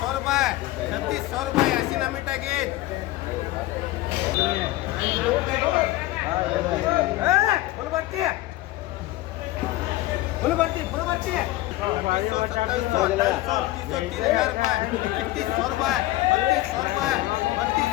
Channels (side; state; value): right; quieter; 17.2 dB